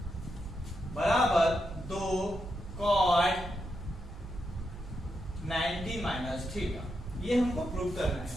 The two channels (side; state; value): right; noise; hum, 13 dB below the sound